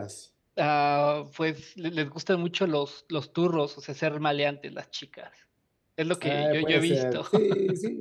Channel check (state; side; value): identical; both; correlation 1.00